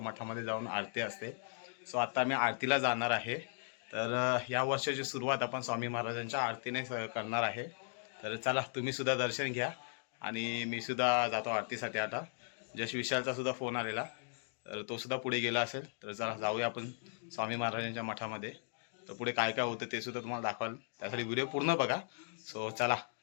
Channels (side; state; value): right; silent; digital silence